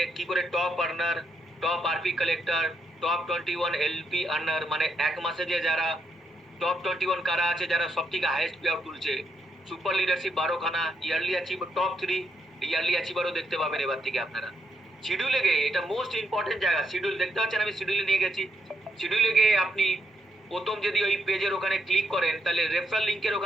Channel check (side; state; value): both; normal; correlation 0.79